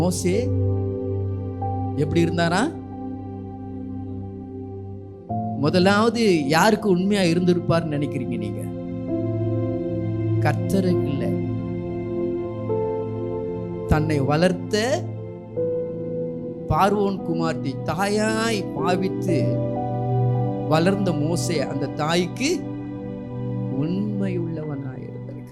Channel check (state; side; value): identical; both; correlation 1.00